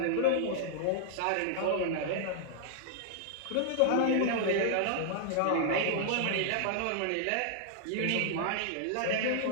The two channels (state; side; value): different; both; correlation -0.01